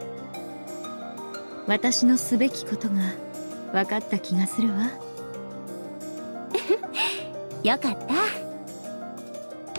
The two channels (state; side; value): inverted; both; correlation -1.00